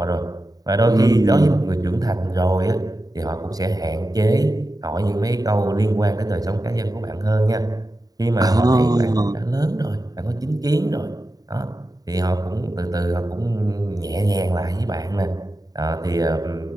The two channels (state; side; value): late; left; 0.18 ms